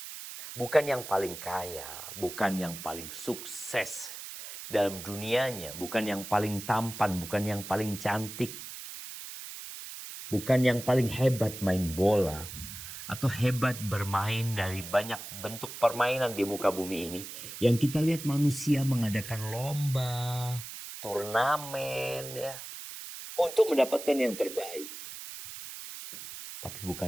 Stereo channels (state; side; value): noise; right; hiss, 11 dB below the sound